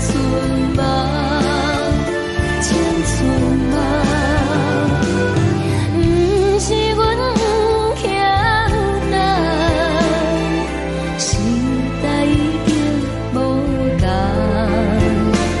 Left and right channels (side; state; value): both; identical; correlation 1.00